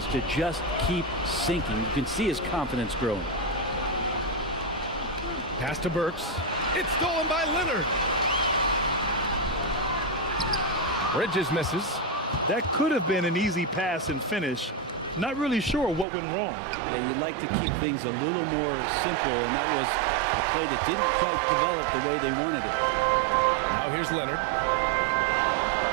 to just keep sinking. You can see his confidence growing. Pass to Burks. It's stolen by Leonard. Bridges misses. That could have been an easy pass and finish. Not really sure what went wrong. Yeah, you'd like to keep things a little more simple, and that was a play that didn't quite develop the way they wanted it. Now here's Leonard.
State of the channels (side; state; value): left; drops out; at 16.1 s